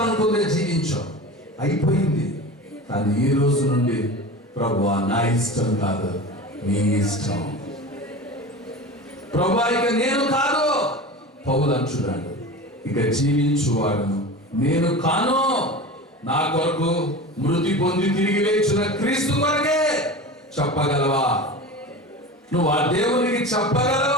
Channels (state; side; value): normal; both; correlation 0.31